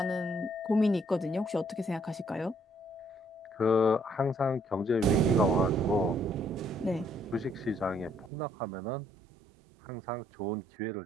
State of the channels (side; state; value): left; drops out; at 8.3 s